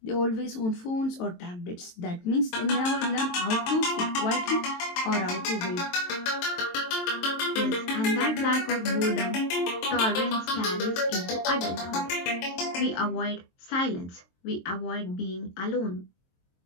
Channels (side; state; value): right; late; 23 ms